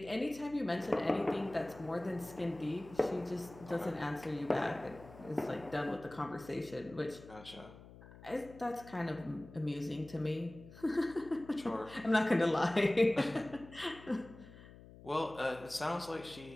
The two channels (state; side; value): noise; left; hum, 18 dB below the sound